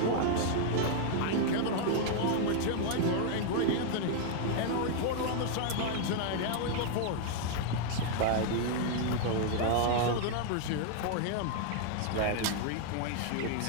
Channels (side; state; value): both; different; correlation 0.00